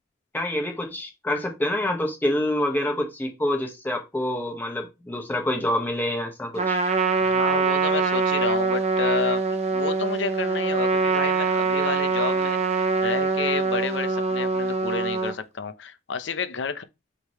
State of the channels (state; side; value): normal; both; correlation 0.28